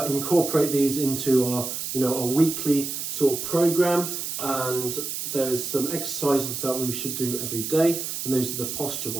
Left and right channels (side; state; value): right; noise; hiss, 4 dB below the sound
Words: incorporate these into our, a weekly sort of program, and there's some exercises that we should do every day, and those are the posture